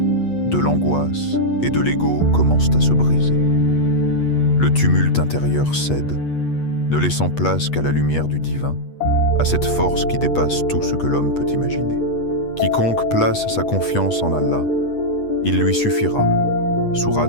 de l'angoisse et de l'ego commencent à se briser. Le tumulte intérieur cède, ne laissant place qu'à la lumière du divin, à cette force qui dépasse tout ce que l'homme peut imaginer. Quiconque place sa confiance en Allah, il lui suffira.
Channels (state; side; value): late; right; 8.4 ms